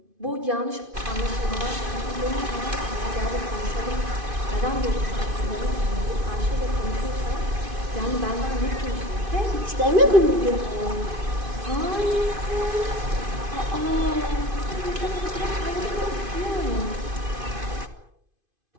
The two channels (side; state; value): left; late; 2.5 ms